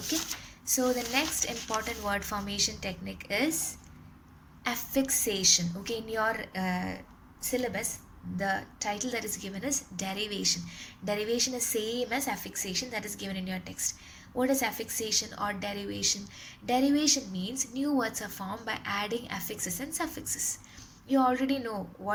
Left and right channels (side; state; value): both; identical; correlation 1.00